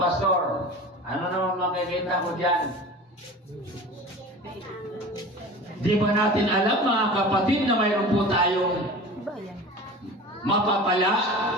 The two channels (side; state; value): both; normal; correlation 0.36